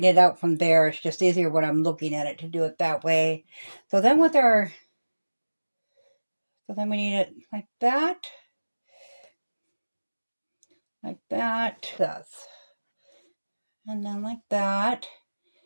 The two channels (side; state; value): both; inverted; correlation -1.00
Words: it out from there. It's just easier when I'm looking at it to do it that way. So then with our So then we need it like that, this, and then like that,